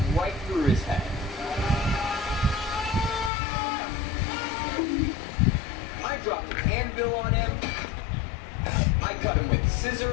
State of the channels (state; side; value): drops out; right; at 3.3 s